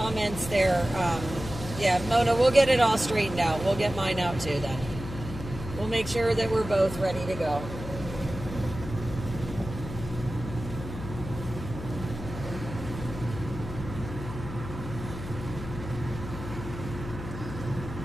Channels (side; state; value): left; noise; hum, 9 dB below the sound